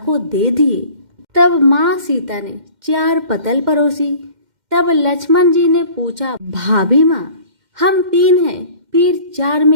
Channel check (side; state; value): left; late; 2.1 ms